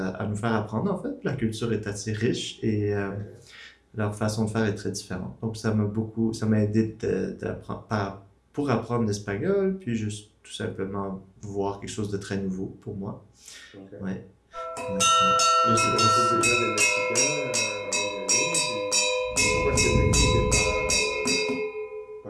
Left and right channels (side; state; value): both; identical; correlation 1.00